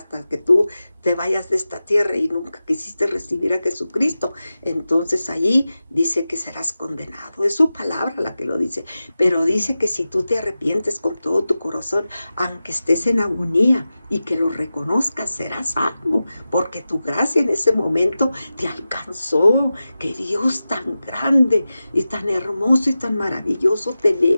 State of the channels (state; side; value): inverted; both; correlation -0.94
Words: que tú te vayas de esta tierra y nunca quisiste recibir a Jesucristo, entonces allí dice que serás condenado. Es su palabra la que lo dice, pero dice que si tú te arrepientes con todo tu corazón, aunque estés en agonía y que lo reconozcas, serás salvo, porque tu gracia en ese momento te alcanzó. Que Dios tan grande y tan hermoso y tan maravilloso